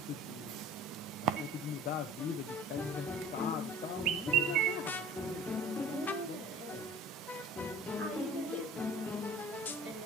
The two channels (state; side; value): normal; both; correlation 0.45